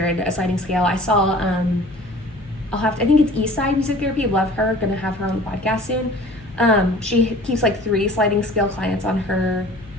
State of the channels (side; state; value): left; noise; hum, 21 dB below the sound